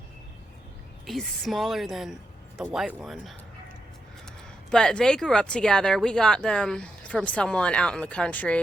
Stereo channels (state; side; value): normal; both; correlation 0.84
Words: He's smaller than the white one. But they grew up together. We got them from someone out in the